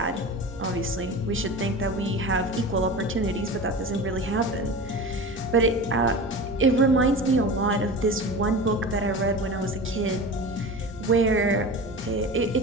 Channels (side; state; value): both; normal; correlation 0.32